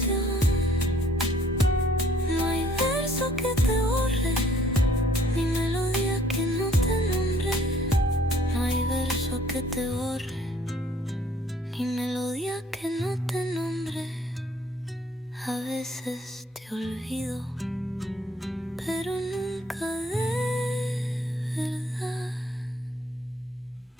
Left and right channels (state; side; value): normal; both; correlation 0.60